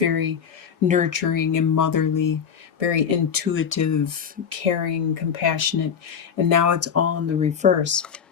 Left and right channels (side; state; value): right; quieter; 7.3 dB